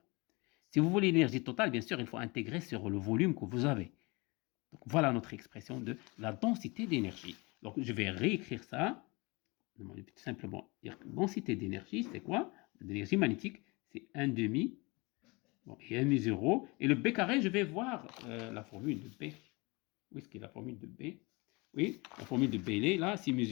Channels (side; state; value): right; quieter; 26.3 dB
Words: Si vous voulez l'énergie totale, bien sûr, il faut intégrer sur le volume que vous avez. Donc, voilà notre expression de la densité d'énergie. Donc, je vais réécrire ça. Tout simplement dire que densité d'énergie, c'est quoi? L'énergie magnétique, c'est 1 demi, bon, et mu 0. Et le B carré, je vais voir la formule de B. Où est-ce qu'il y a la formule de B? Oui, la formule de B, elle est là. C'est mu